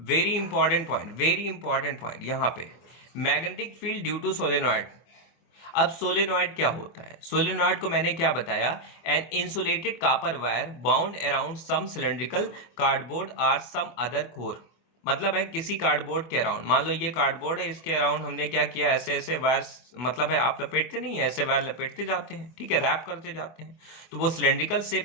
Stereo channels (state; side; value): late; right; 24 ms